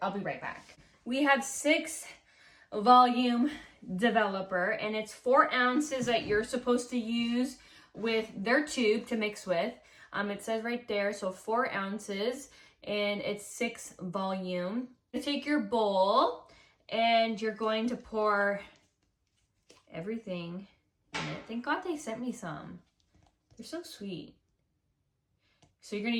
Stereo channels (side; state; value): both; identical; correlation 1.00